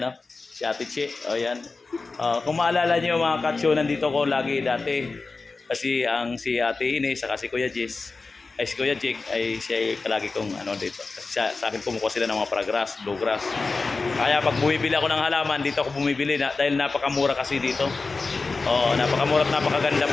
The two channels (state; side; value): quieter; right; 4.0 dB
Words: si Ate Che. O yan. Kung maalala niyo mga Kacho, nandito ko lagi dati. Kasi si Ate Ines, saka si Kuya Jess, si Kuya Jake, ay siya ay palagi kong dito. Kasi sa akin kumukuha sila ng mga paragrass, bluegrass. Kaya pag bumibili ako ng halaman, dito ako bumibili dahil napakamura kasi dito. Napakamura at napakaganda